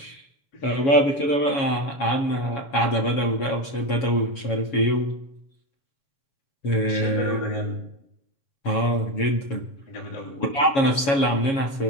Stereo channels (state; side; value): late; right; 7.3 ms